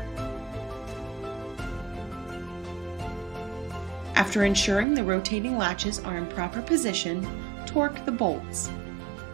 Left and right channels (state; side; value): drops out; left; at 4.9 s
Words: After ensuring the rotating latches are in proper position, torque the bolts.